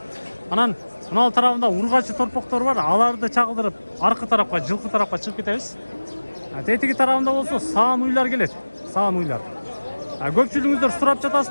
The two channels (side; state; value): both; inverted; correlation -1.00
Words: Анан мынау тарабында ургачы торпоктор бар. Аларды чагылдырып, аркы тарапка, жылкы тарапка чыгып кетебиз. Тетиги тарабында болсо саан уйлар келет. Саан уйлар. Көпчүлүгүңүздөр сурап